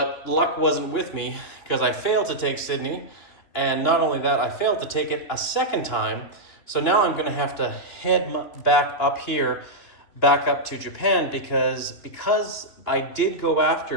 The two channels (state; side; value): late; right; 2.9 ms